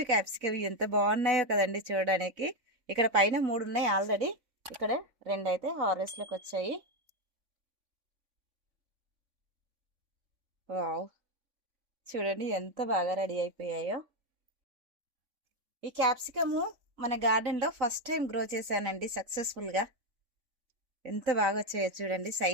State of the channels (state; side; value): late; left; 4.1 ms